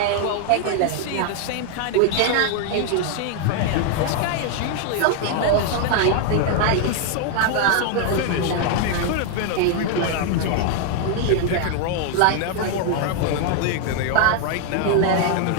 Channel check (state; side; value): different; both; correlation 0.00